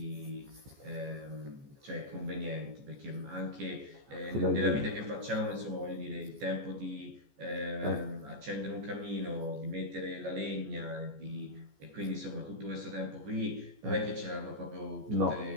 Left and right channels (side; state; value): left; late; 14 ms